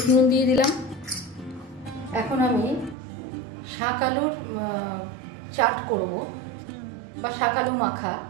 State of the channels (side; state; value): left; drops out; at 3.0 s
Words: নুন দিয়ে দিলাম। এখন আমি শাক আলুর চাট করব বা শাক আলু মাখা।